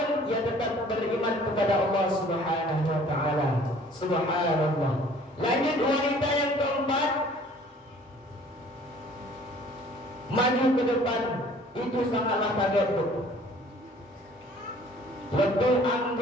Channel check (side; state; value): both; normal; correlation 0.53